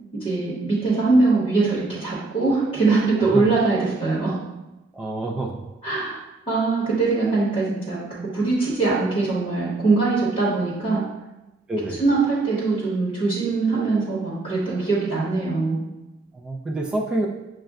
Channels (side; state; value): left; quieter; 3.1 dB